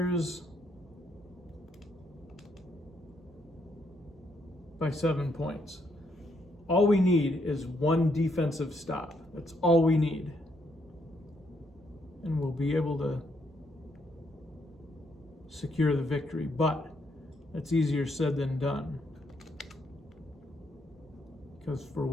by 7 points. All we need is one defensive stop. That's all we need. And we'll be able to secure the victory. But that's easier said than done. Because for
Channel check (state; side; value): normal; both; correlation 0.75